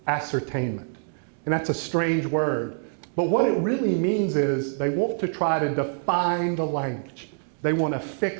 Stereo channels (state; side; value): silent; left; digital silence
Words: ascertainment. And that's a strange word. But what it really means is they want to try to define the language. They want to